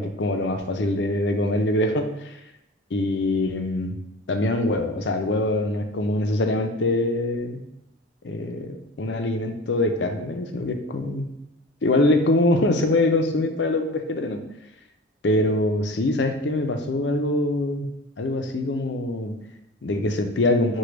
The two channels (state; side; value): normal; both; correlation 0.36